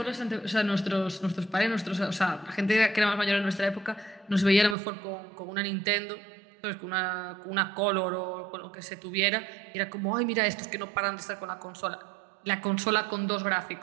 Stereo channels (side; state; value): left; drops out; at 4.8 s